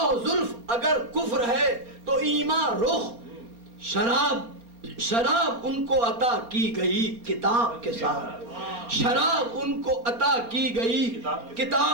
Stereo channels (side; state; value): left; late; 4.3 ms